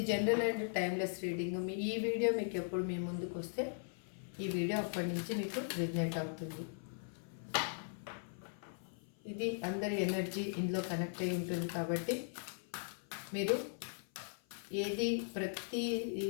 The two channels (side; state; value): right; silent; 52 dB below the other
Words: జనరల్ అండ్ టైమ్లెస్ రీడింగ్. ఈ వీడియో మీకు ఎప్పుడు మీ ముందుకు వస్తే ఈ వీడియో అప్పటి నుంచి మీకు రిజనేట్ అవుతుంది. ఇది అందరి ఎనర్జీ ఇందులో కనెక్ట్ అయి ఉంటుంది కాబట్టి మీరు ఏది ప్రతి